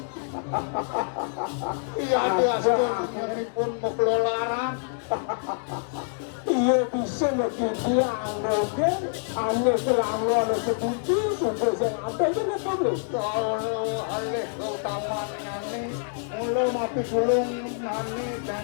iya dia pun mengelola Ia bisa berjuang dengan hanya selama ada sebuti sudah sampai dengan boleh. Kalau alih utamanya nih, belum api gulung nanti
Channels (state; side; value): silent; right; digital silence